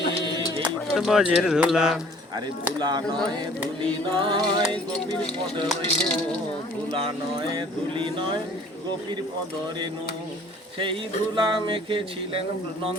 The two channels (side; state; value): both; normal; correlation 0.53